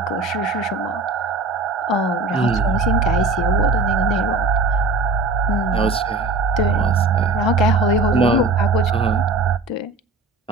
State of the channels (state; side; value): quieter; left; 3.5 dB